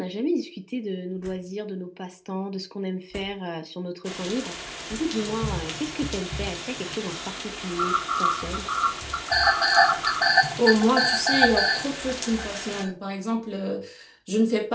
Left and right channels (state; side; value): identical; both; correlation 1.00